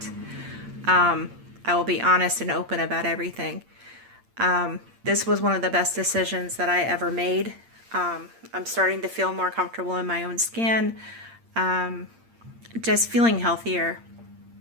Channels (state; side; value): late; left; 8.7 ms